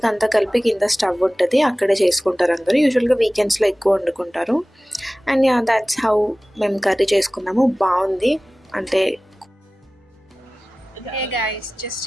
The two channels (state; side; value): normal; both; correlation 0.97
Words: అంతా కలిపి కింద స్టవ్ ఉంటుంది, అక్కడే చేసుకుంటారు అందరూ. యూజువల్గా వీకెండ్స్లో ఎక్కువ వండుకుంటారు. అండ్ యా, దాట్స్ హౌ మేము కర్రీ చేసుకున్నాము. బాగుంది అంటే. హే గైస్, జస్ట్